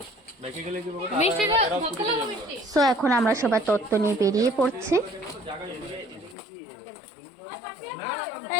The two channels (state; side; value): drops out; right; at 6.4 s